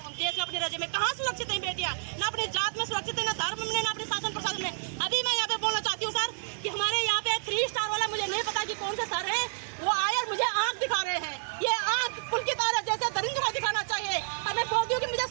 में, अपने राज्य में? कहाँ सुरक्षित है बेटियां? न अपनी जात में सुरक्षित है, न धर्म में, न अपने शासन प्रशासन में। अभी मैं यहाँ पे बोलना चाहती हूँ सर कि हमारे यहाँ पे 3 स्टार वाला, मुझे नहीं पता कि कौन से सर है, वो आए और मुझे आंख दिखा रहे हैं। ये आंख पुलकित आर्या जैसे दरिंदों को दिखाना चाहिए। और मैं बोलती हूँ कि मुझे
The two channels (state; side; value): silent; left; digital silence